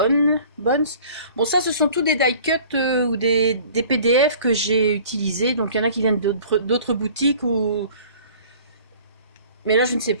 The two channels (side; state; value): both; inverted; correlation -0.48